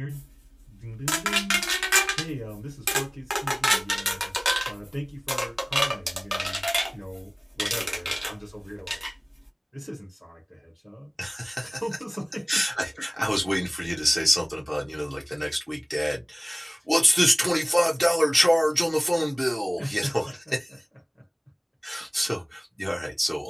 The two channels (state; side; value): identical; both; correlation 1.00